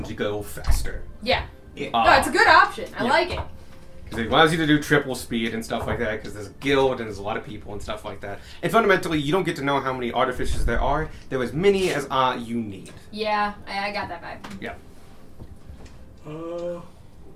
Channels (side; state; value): both; identical; correlation 1.00